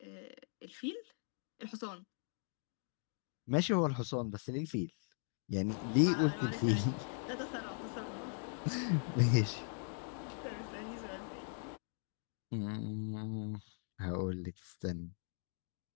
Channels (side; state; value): right; silent; 51 dB below the other